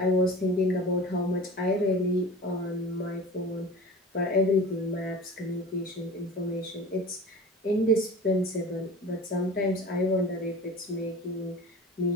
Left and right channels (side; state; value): both; normal; correlation 0.36